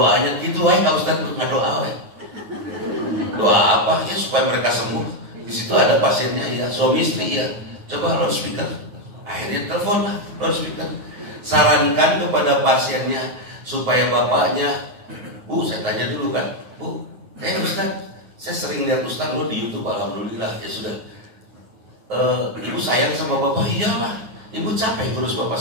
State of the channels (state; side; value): late; left; 9.2 ms